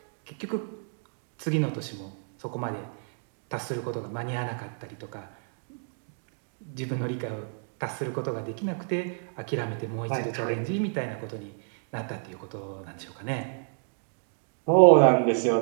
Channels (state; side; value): silent; left; digital silence